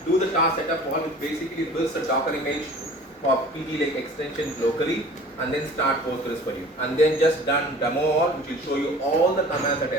do the task setup all, which basically builds a Docker image for PgLake extensions locally, and then start Postgres for you. And then just done demo all, which will show you all the commands that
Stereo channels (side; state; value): both; normal; correlation 0.45